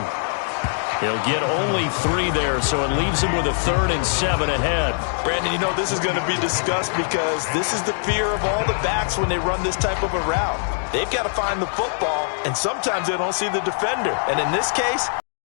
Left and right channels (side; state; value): right; silent; digital silence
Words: He'll get only 3 there, so it leaves him with a 3rd and 7 ahead. Brandon, you know this is going to be discussed because this is the fear of all the backs when they run this type of a route. They've got to find the football, and sometimes they don't see the defender. And in this case,